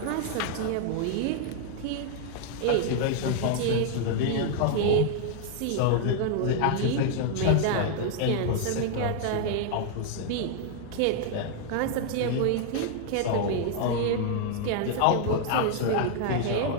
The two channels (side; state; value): both; different; correlation 0.00